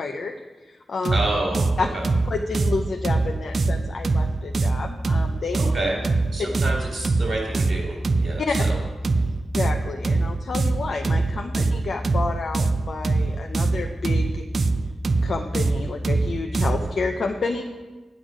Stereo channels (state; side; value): normal; both; correlation 0.92